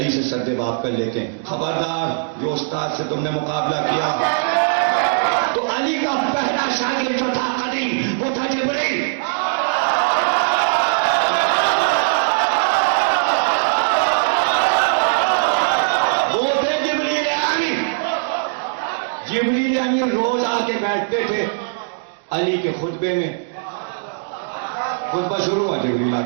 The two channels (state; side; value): silent; left; digital silence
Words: से सद्देबाब कर लेते हैं, खबरदार जो उस्ताद से तुमने मुकाबला किया। तो अली का पहला शागिर्द जो था कदीम, वो था जिब्रील। वो थे जिब्रील अमीन। जिब्रील अमीन रोज आके बैठते थे अली के खुतबे में। खुतबा शुरू हुआ, जिब्रील